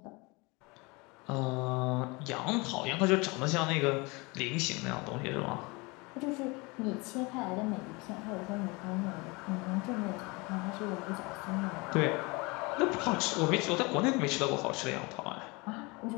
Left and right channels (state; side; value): quieter; right; 26.4 dB